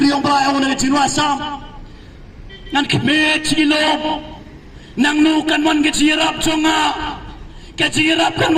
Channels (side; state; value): both; identical; correlation 1.00